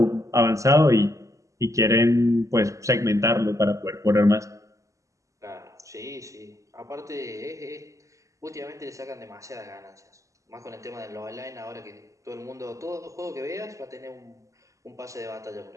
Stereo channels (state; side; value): late; left; 0.16 ms